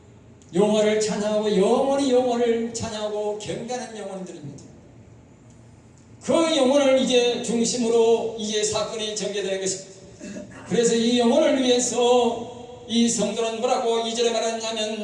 여호와를 찬양하고 영원히 여호와를 찬양하고 경배하는 영혼들입니다. 그 영혼을 이제 중심으로 이제 사건이 전개되는 것입니다. 그래서 이 영혼을 위해서 이 성도는 뭐라고 2절에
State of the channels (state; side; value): identical; both; correlation 1.00